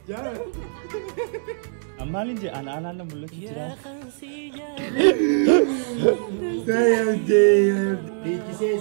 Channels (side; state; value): left; silent; 63 dB below the other